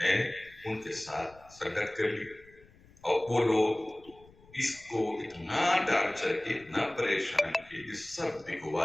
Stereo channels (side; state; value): left; noise; rumble, 26 dB below the sound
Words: ان کے ساتھ سنگت کر لی. اور وہ لوگ اس کو اتنا ٹارچر کی، اتنا پریشان کی کہ سب